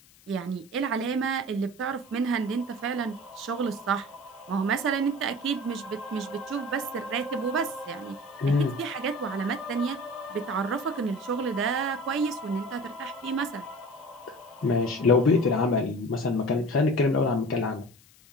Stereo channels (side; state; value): left; noise; hiss, 27 dB below the sound